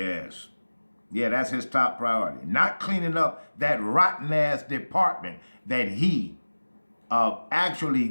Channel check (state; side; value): inverted; both; correlation -1.00